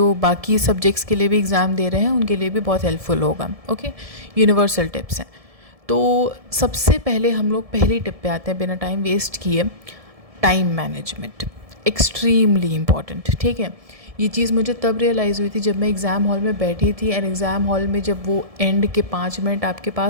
बाकी सब्जेक्ट्स के लिए भी एग्ज़ाम दे रहे हैं उनके लिए भी बहुत हेल्पफुल होगा। ओके, यूनिवर्सल टिप्स हैं। तो सबसे पहले हम लोग पहली टिप पे आते हैं बिना टाइम वेस्ट किए। Time management extremely important. ठीक है, ये चीज़ मुझे तब रियलाइज़ हुई थी जब मैं एग्ज़ाम हॉल में बैठी थी। एंड एग्ज़ाम हॉल में जब वो एंड के 5 मिनट आपके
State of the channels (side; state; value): left; late; 1.7 ms